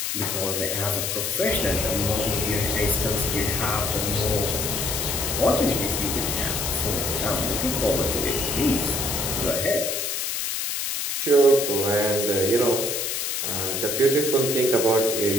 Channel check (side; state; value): left; noise; hiss, 1 dB below the sound